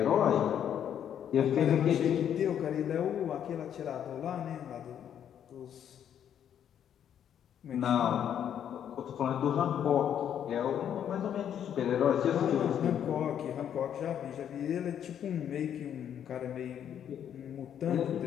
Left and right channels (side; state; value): right; quieter; 9.4 dB